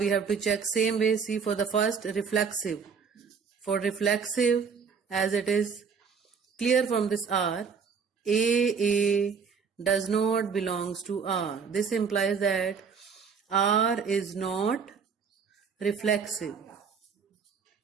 have to check same way. See, for the first, reflexive. For reflexive, as it is clear from this R, AA does not belongs to R. This implies that R is not reflexive.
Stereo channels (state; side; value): quieter; left; 6.0 dB